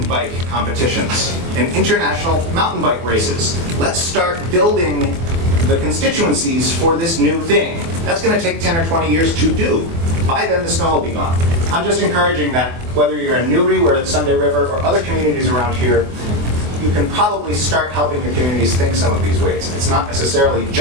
bike competitions and international mountain bike races. Let's start building the constituencies for this new thing. That's going to take 10 or 20 years to do. By then, the snow will be gone. I'm just encouraging that whether you're in Newry, where it's Sunday River, or other communities around here, you can probably start helping your communities think some of these ways. It's not necessarily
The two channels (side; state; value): left; late; 24 ms